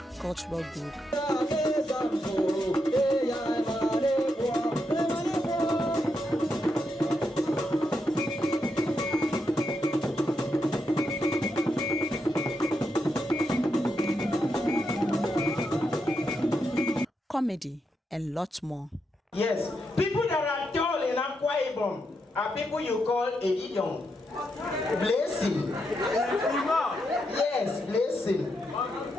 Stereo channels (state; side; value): normal; both; correlation 0.82